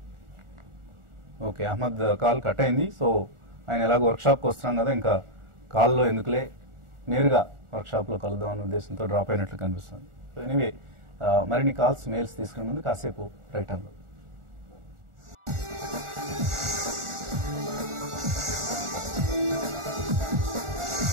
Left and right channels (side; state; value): left; late; 1.4 ms